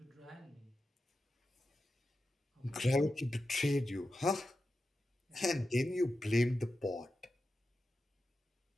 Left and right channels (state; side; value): normal; both; correlation 0.91